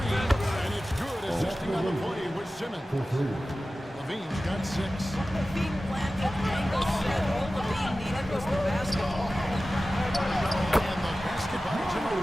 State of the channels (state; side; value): normal; both; correlation 0.95